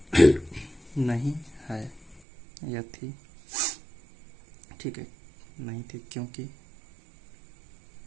नहीं है या थी। ठीक है, नहीं थी क्योंकि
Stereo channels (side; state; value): left; drops out; at 2.2 s